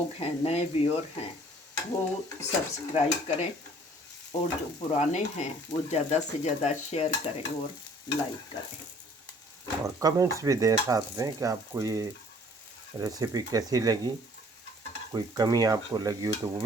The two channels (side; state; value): both; normal; correlation 0.55